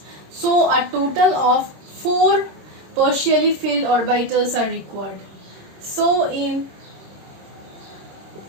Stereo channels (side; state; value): left; late; 26 ms